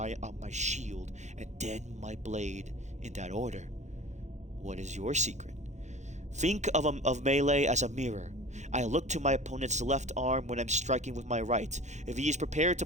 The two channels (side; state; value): left; late; 0.34 ms